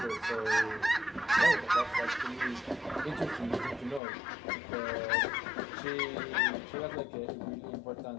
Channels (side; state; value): right; drops out; at 4.0 s